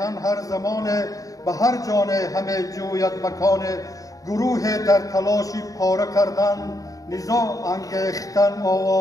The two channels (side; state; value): right; late; 0.17 ms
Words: هر زمانه، به هر جانه همه جوید مکانه. گروه در تلاشی پاره کردن، نزاع انگیختن